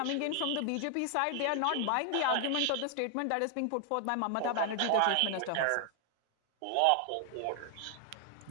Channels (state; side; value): different; both; correlation 0.00